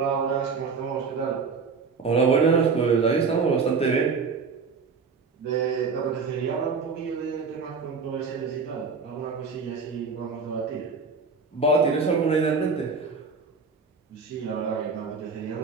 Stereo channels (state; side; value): quieter; left; 4.9 dB